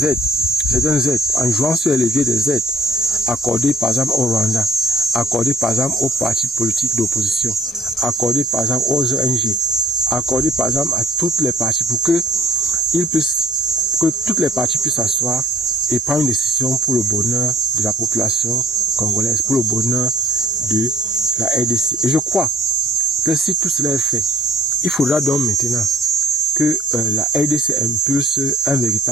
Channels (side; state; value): both; normal; correlation 0.56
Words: aides, certaines aides, en jouant sur les leviers des aides, accordées par exemple au Rwanda, accordées par exemple aux partis politiques d'opposition, accordées par exemple aux ONG, accordées par exemple à toutes les parties pour que toutes les parties puissent s'asseoir et prendre une décision pour le bonheur de la population congolaise, pour le bonheur de la RDC. Et je crois que si tout cela est fait, il faudra donc maintenant que la RDC impulse un